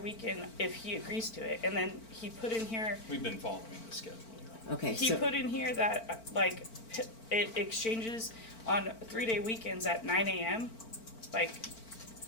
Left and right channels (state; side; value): late; right; 4.4 ms